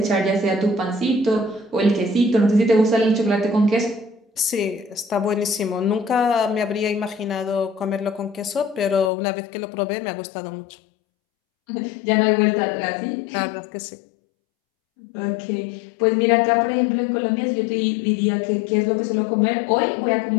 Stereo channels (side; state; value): right; drops out; at 9.1 s